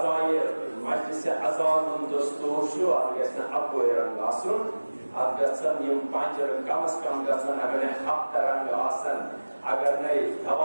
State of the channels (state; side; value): inverted; both; correlation -1.00